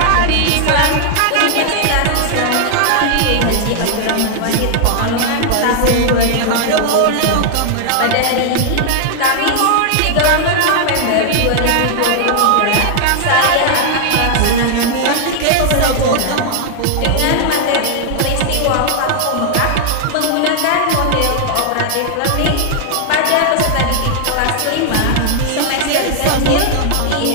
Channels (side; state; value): both; different; correlation 0.00